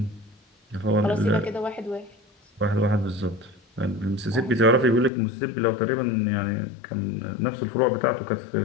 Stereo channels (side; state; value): right; drops out; at 5.1 s